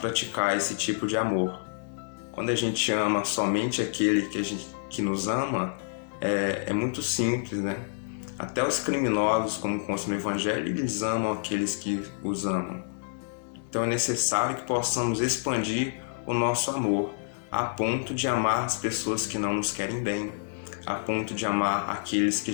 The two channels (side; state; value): right; silent; digital silence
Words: esse tipo de amor. Quando a gente ama somente aquele que nos ama, é muito simples, né? Até os criminosos, como consta no Evangelho, eles amam aqueles que os amam. Então é necessário que possamos expandir o nosso amor, a ponto de amar as pessoas que não nos querem bem, a ponto de amar aqueles que